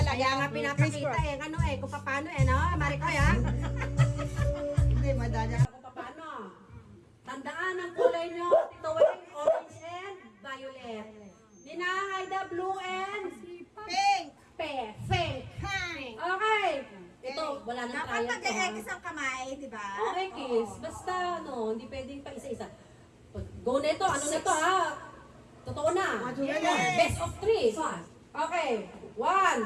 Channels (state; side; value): identical; both; correlation 1.00